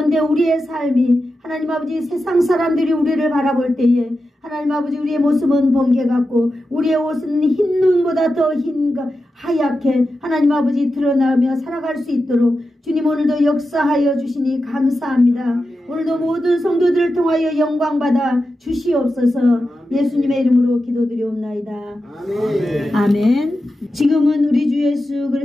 우리의 삶이 하나님 아버지 세상 사람들이 우리를 바라볼 때에 하나님 아버지 우리의 모습은 번개 같고 우리의 옷은 흰 눈보다 더 하얗게 하나님 아버지 드러나며 살아갈 수 있도록 주님 오늘도 역사하여 주시니 감사합니다. 오늘도 모든 성도들을 통하여 영광 받아 주시옵소서. 예수님의 이름으로 기도드리옵나이다. 아멘. 아멘. 지금은 우리 주 예수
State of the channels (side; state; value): both; normal; correlation 0.91